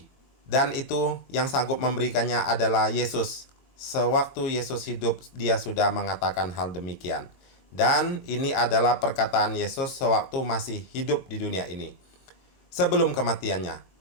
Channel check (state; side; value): late; right; 22 ms